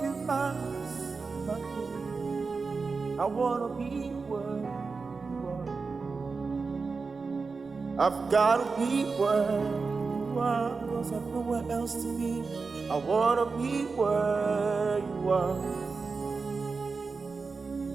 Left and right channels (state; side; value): quieter; left; 4.5 dB